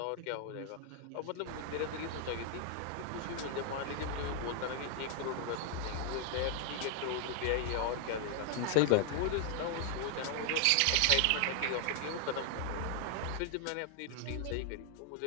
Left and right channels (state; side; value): different; both; correlation 0.00